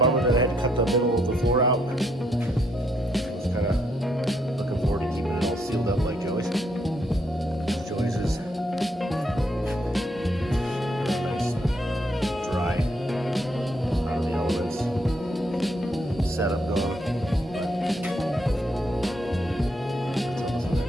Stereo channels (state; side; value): normal; both; correlation 0.74